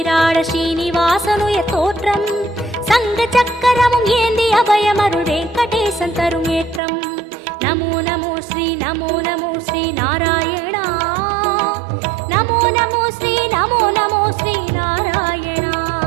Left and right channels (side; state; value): left; drops out; at 6.8 s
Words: ஸ்ரீனிவாசனுயர் தோற்றம் சங்க சக்கரமும் ஏந்தி அபயமருள் வெங்கடேசன் தரும் ஏற்றம் நமோ நமோ ஸ்ரீ நமோ நமோ ஸ்ரீ நாராயணா நமோ நமோ ஸ்ரீ நமோ நமோ ஸ்ரீ நாராயணா